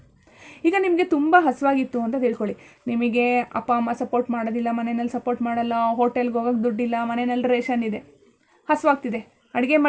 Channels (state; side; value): identical; both; correlation 1.00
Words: ಈಗ ನಿಮಗೆ ತುಂಬ ಹಸುವಾಗಿತ್ತು ಅಂತ ತಿಳ್ಕೊಳ್ಳಿ. ನಿಮಗೆ ಅಪ್ಪ ಅಮ್ಮ ಸಪೋರ್ಟ್ ಮಾಡೋದಿಲ್ಲ, ಮನೆಯಲ್ಲಿ ಸಪೋರ್ಟ್ ಮಾಡಲ್ಲ, ಹೋಟೆಲ್ಗೆ ಹೋಗೋಕ್ಕೆ ದುಡ್ಡಿಲ್ಲ, ಮನೆಯಲ್ಲಿ ರೇಷನ್ ಇದೆ, ಹಸುವಾಗ್ತಿದೆ. ಅಡುಗೆ